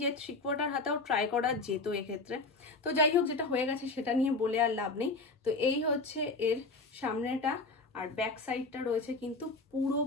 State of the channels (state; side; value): quieter; right; 3.6 dB